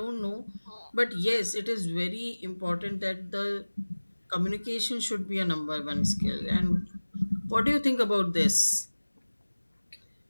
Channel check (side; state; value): both; inverted; correlation -1.00